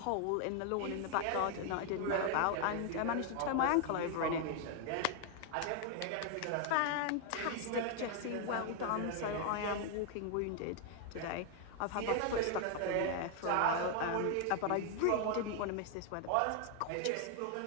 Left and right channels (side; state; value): both; different; correlation 0.00